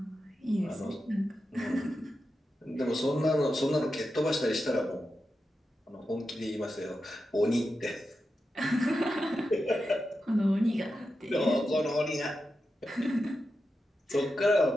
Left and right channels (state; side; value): normal; both; correlation 0.90